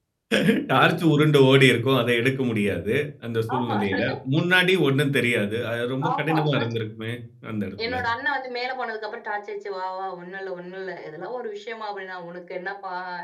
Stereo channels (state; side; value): identical; both; correlation 1.00